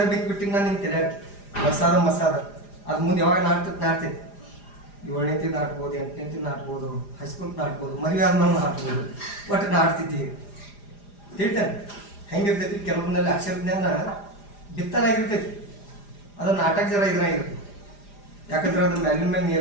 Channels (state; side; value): late; right; 4.9 ms